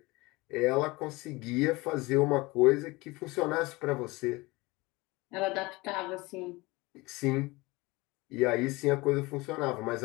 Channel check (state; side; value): quieter; right; 22.6 dB